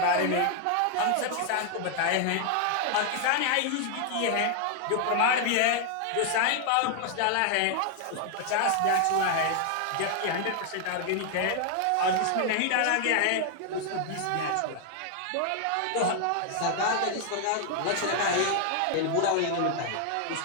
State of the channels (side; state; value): both; different; correlation 0.00